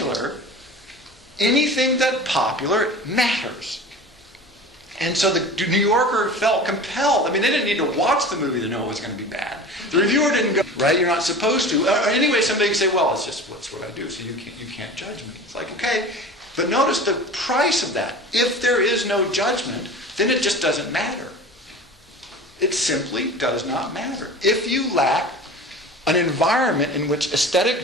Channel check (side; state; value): both; normal; correlation 0.36